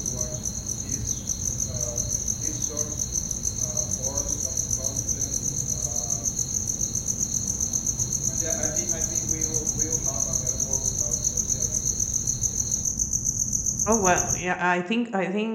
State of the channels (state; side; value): identical; both; correlation 1.00